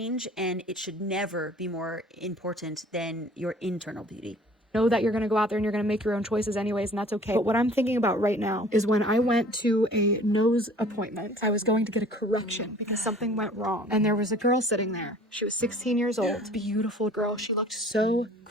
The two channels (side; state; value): both; normal; correlation 0.50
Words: and it should never be more important than your internal beauty. Know that you're going to go out there and you're going to make your own choices anyways, and that's okay. But what I'm thinking about right now is when I went to a nose appointment, I was going to get a correction because something went wrong. And there was a girl sitting there. She was 16 years old, beautiful girl. She looked so